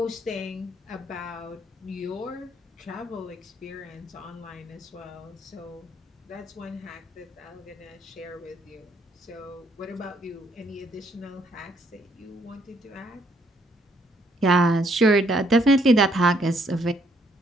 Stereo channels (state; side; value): normal; both; correlation 0.69